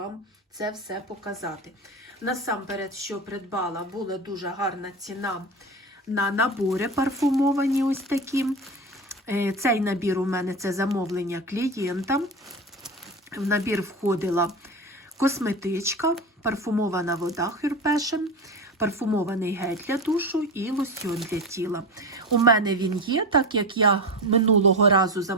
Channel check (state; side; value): normal; both; correlation 0.23